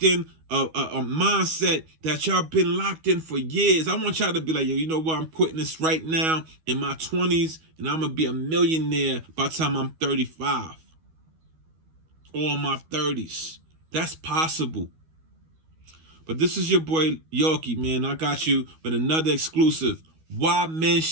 in a mindset that y'all been locked in for years. I want y'all to be like, yo, you know what? I'm quitting this right now in my 20s, and I'm going to be a millionaire by the time I'm 35. Or in my 30s. That's possible. But this is your boy Yorkie, man. I got you with another exclusive. Why men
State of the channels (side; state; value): left; late; 12 ms